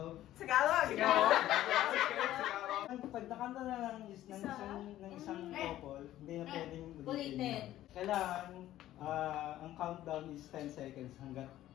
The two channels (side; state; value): right; quieter; 13.7 dB